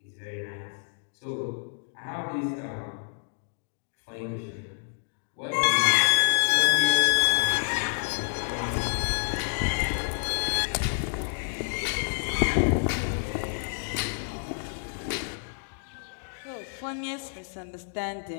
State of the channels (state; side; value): silent; right; digital silence